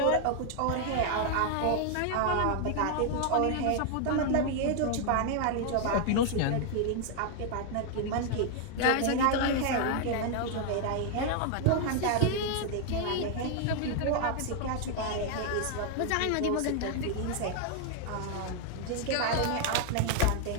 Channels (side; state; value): both; different; correlation 0.00